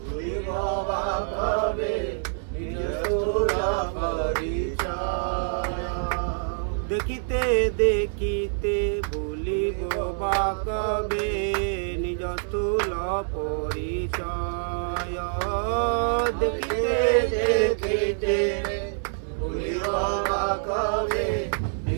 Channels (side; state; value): left; silent; 61 dB below the other